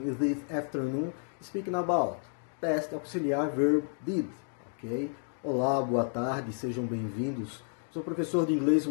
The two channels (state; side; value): silent; right; 57 dB below the other